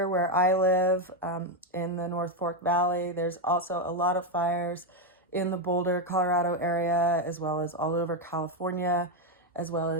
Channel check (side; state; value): both; normal; correlation 0.05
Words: where I live, in the North Fork Valley. There's also a lot of fires in the Boulder, Colorado area, as well as all over California, as well